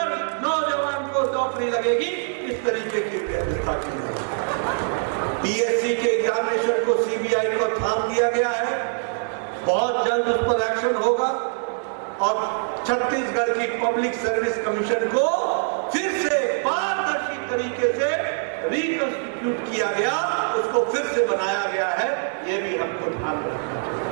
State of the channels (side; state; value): left; silent; 63 dB below the other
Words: नौजवान को नौकरी लगेगी। इस तरीके की व्यवस्था की है। पीएससी के एग्जामिनेशन को सीबीआई को थाम दिया गया है। बहुत जल्द उस पर एक्शन होगा और छत्तीसगढ़ की पब्लिक सर्विस कमीशन को फिर से पारदर्शी तरीके से रिकंस्टिट्यूट किया गया, उसको फिर से बनाया गया है। ये भी हमको ध्यान रखना चाहिए।